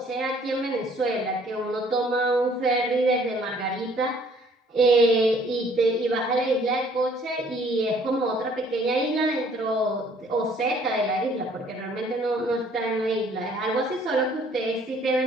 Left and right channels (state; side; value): normal; both; correlation 0.59